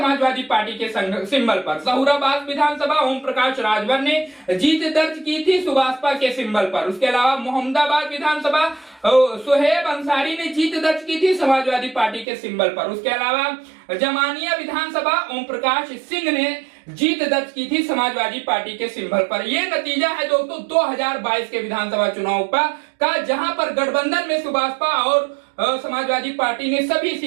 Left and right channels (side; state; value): left; drops out; at 12.2 s